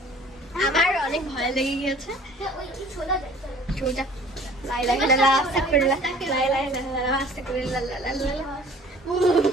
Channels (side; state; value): both; normal; correlation 0.50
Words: আমার অনেক ভয় লেগে গিয়েছে।